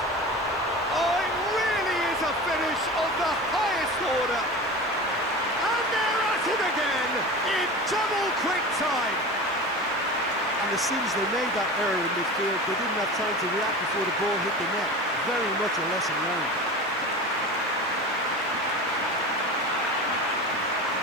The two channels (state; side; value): noise; right; hiss, 27 dB below the sound